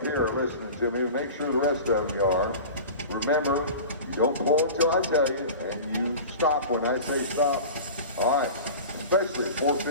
here are listening to me. Make sure the rest of them are. Remember, you don't pull until I tell you, and you stop when I say stop. All right. Especially 4,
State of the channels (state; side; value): inverted; both; correlation -0.34